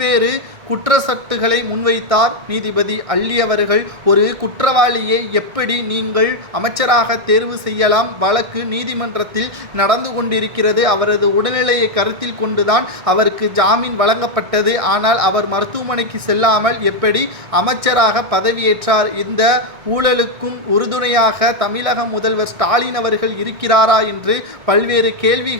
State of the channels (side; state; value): left; late; 1.6 ms